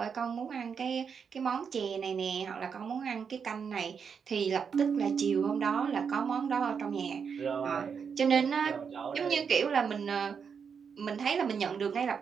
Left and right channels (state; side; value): quieter; left; 6.5 dB